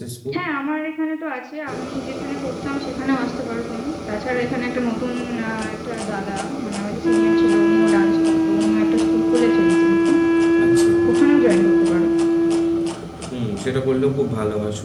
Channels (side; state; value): both; identical; correlation 1.00